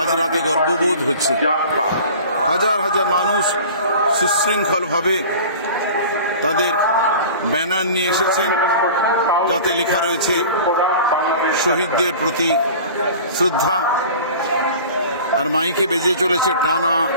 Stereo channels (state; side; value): inverted; both; correlation -0.40